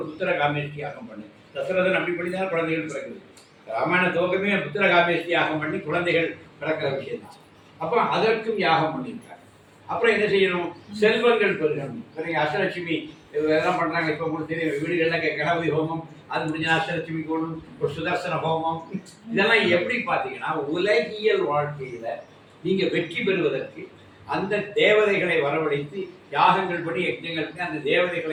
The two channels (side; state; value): both; identical; correlation 1.00